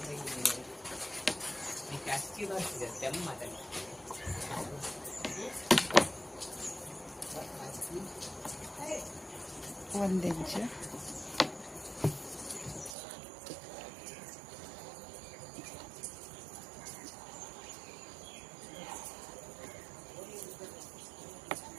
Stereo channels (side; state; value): left; drops out; at 13.0 s